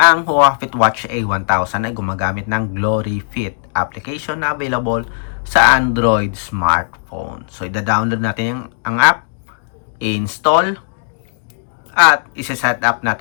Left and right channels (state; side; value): silent; right; digital silence